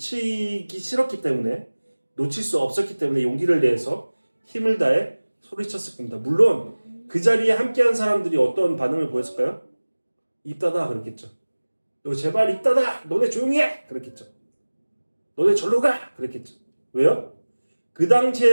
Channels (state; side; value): inverted; both; correlation -1.00